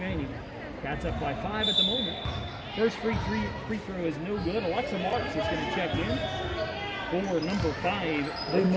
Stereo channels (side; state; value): both; identical; correlation 1.00